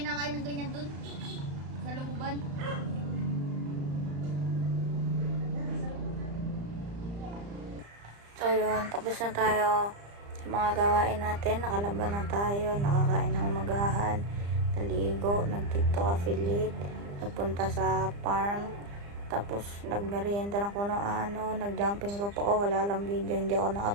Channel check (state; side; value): late; left; 35 ms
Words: ng ganyan dun. Sa looban. So yun, tapos na tayo sa mga gawain natin. Nakalaban na tayo, nakakain ng umagahan, naligo, nag-tiktok affiliate, nagpunta sa farm, tapos nagmerienda ng kuno ano, nag-jumping rope ako, wala lang video, hindi ako